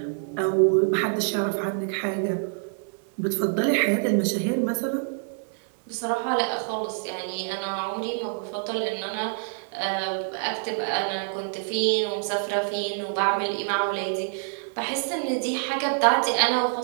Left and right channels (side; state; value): left; silent; 58 dB below the other